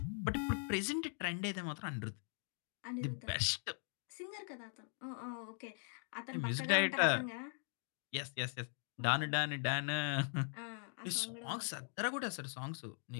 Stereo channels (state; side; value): silent; right; 51 dB below the other